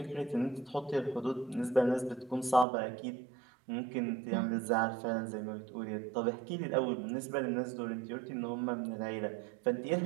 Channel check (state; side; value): drops out; left; at 2.7 s